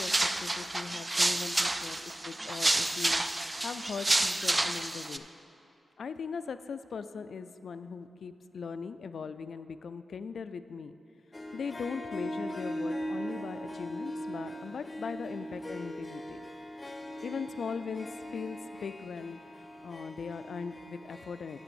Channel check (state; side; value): normal; both; correlation 0.93